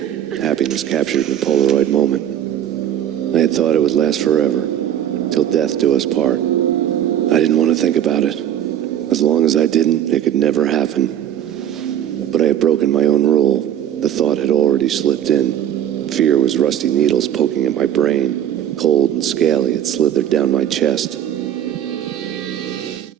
Happiness captured in a Polaroid moment. I had thought it would last forever, till death do us part. I didn't want to think about it. As long as I didn't, it could never happen. But I had broken my own rule. The thought had already slipped in. Fear was rusty needles poking at my brain. Cold and scaly, it slithered down my chest.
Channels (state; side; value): quieter; left; 10.4 dB